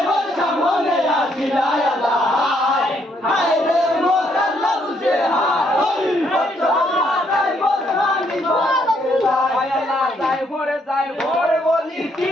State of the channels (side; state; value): both; normal; correlation 0.72